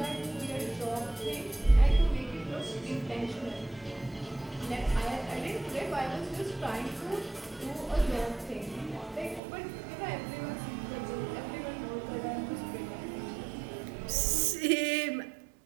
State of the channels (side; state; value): left; drops out; at 9.4 s